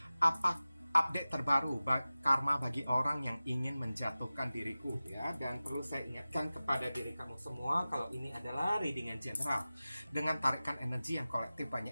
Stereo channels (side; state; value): both; inverted; correlation -0.96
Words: Apa update terbaru karma bagi orang yang ingin menjatuhkan diriku ya. Dan perlu saya ingatkan kepada diri kamu semua kalau ini adalah reading yang general dengan tarikan energi yang kolektif